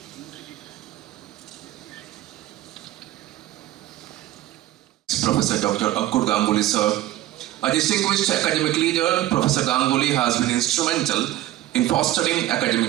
Professor Dr. Ankur Ganguly, sir. A distinguished academic leader, Professor Ganguly has been instrumental in fostering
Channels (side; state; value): left; quieter; 14.7 dB